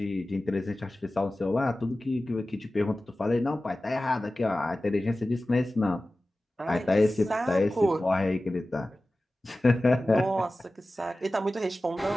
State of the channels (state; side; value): normal; both; correlation 0.96